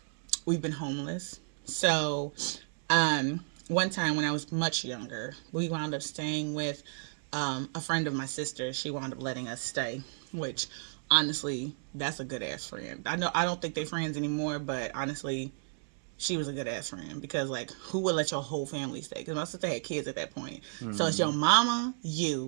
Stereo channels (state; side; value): silent; left; 56 dB below the other